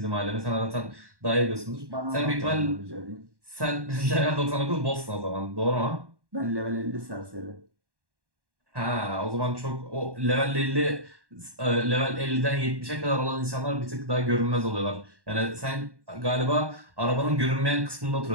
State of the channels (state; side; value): late; left; 1.1 ms